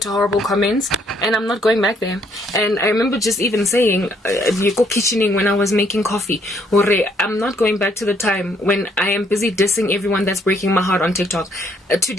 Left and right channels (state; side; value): normal; both; correlation 0.68